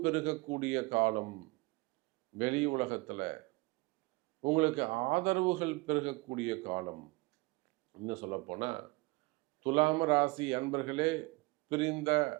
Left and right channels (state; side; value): quieter; left; 24.5 dB